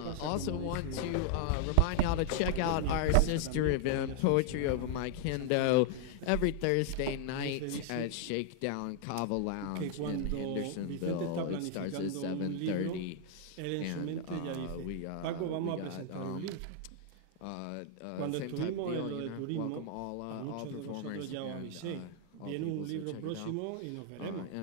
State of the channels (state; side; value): different; both; correlation 0.00